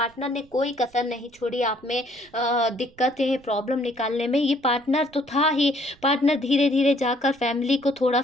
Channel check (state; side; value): noise; right; rumble, 29 dB below the sound